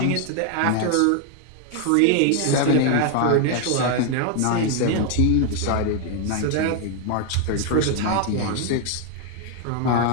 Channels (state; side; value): different; both; correlation 0.00